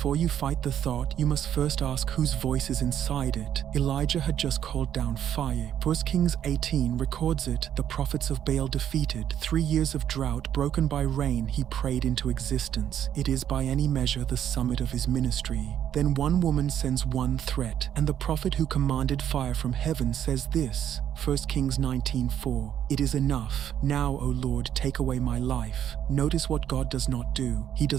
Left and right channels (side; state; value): left; quieter; 10.0 dB